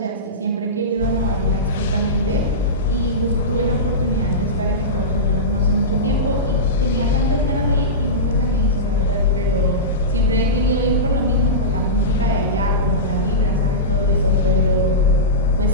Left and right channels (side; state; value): both; normal; correlation -0.17